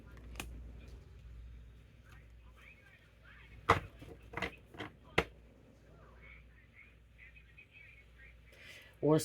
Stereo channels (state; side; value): identical; both; correlation 1.00